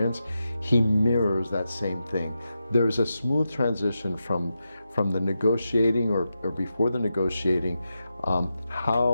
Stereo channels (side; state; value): both; inverted; correlation -0.89